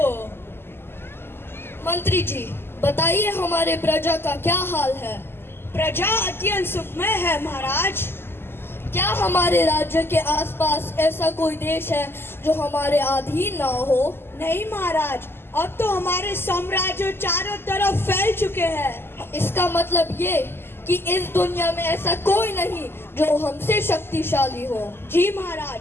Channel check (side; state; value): right; late; 0.11 ms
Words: मंत्री जी, बताइए हमारे प्रजा का क्या हाल है? प्रजा अत्यंत सुखमय है महाराज। क्या हमारे राज्य के आसपास ऐसा कोई देश है जो हमारे अधीन ना हो? नहीं महाराज, अब तो हमारे साम्राज्य चारों तरफ फैल चुके हैं। इसका मतलब ये कि इस दुनिया में ऐसा कोई नहीं जो हमसे शक्तिशाली हो। जी